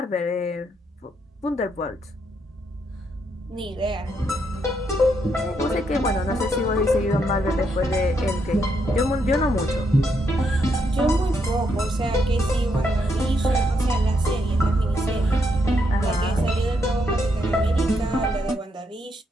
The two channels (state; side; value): normal; both; correlation 0.77